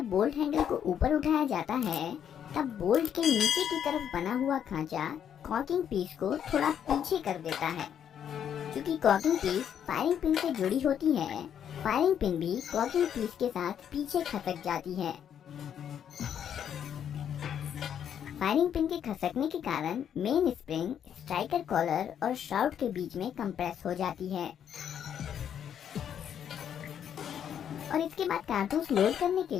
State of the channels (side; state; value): right; quieter; 9.0 dB